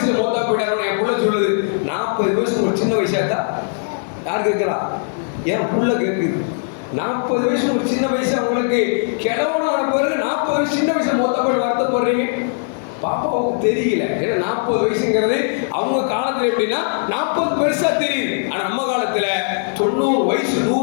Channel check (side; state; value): right; silent; 58 dB below the other